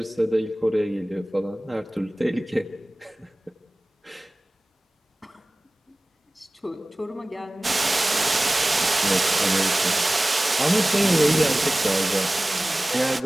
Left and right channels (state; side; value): normal; both; correlation 0.98